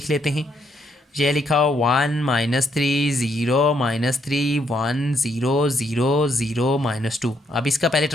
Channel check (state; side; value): normal; both; correlation 0.74